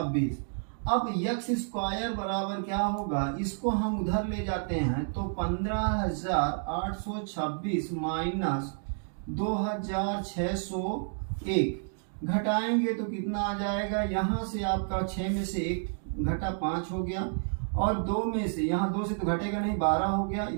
अब यक्ष स्क्वायर बराबर क्या होगा? इसको हम उधर ले जाते हैं तो 15,826 माइनस 2,601 घटाएंगे तो कितना आ जाएगा? यहाँ से आपका 6 में से 1 घटा 5 हो गया, और 2 में से, यहाँ 2 से तो घटेगा नहीं, 12 हो गया।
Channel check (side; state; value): left; silent; digital silence